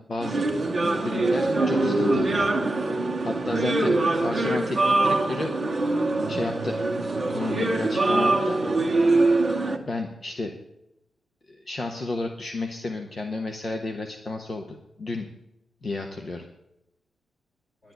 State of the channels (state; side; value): normal; both; correlation 0.90